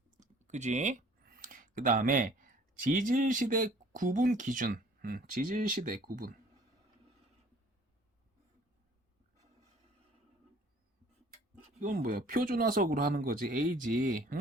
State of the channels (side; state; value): both; normal; correlation 0.54